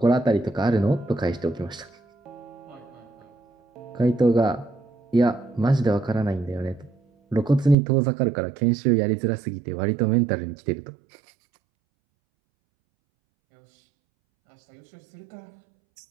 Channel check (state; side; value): drops out; left; at 7.8 s